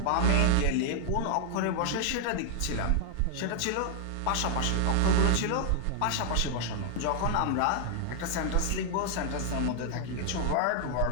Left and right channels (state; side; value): different; both; correlation 0.00